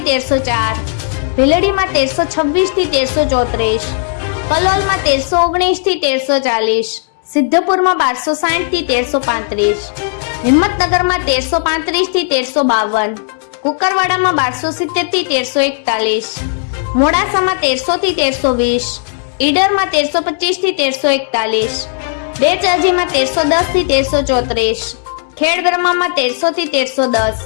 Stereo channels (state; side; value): silent; right; digital silence